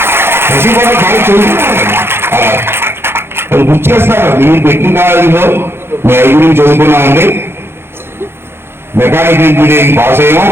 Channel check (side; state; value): left; late; 0.11 ms